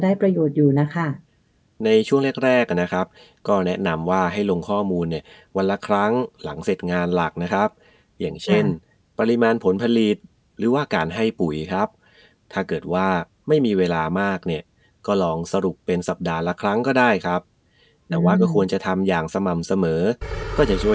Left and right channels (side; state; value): both; identical; correlation 1.00